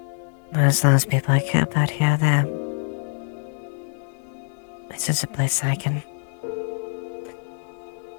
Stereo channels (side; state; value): right; silent; 62 dB below the other